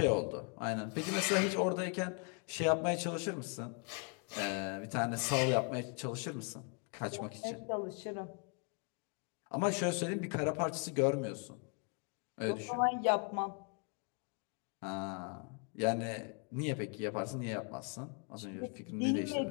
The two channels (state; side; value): quieter; right; 36.7 dB